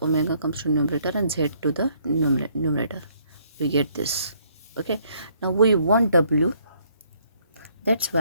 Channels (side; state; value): both; inverted; correlation -0.67